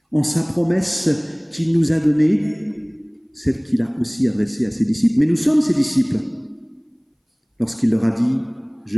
en sa promesse qu'il nous a donnée, celle qu'il a aussi adressée à ses disciples. Mais nous sommes ses disciples. Lorsqu'il leur a dit «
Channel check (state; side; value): identical; both; correlation 1.00